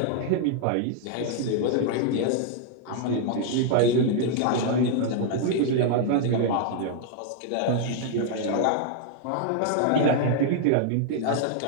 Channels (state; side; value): different; both; correlation 0.00